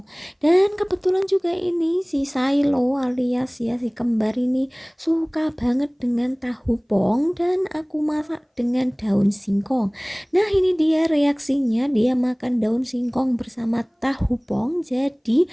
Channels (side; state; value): both; identical; correlation 1.00